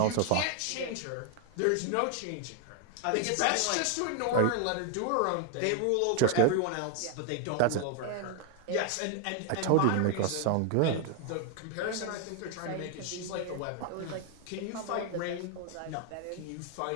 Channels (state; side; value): different; both; correlation 0.00